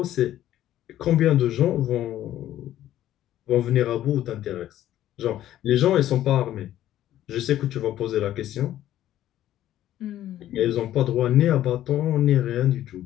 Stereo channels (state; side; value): quieter; right; 12.7 dB